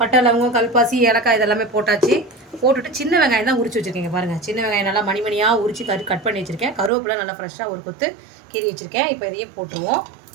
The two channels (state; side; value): drops out; left; at 6.9 s